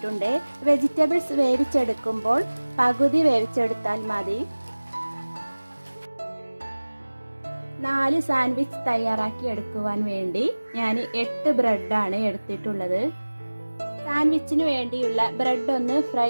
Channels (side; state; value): both; inverted; correlation -1.00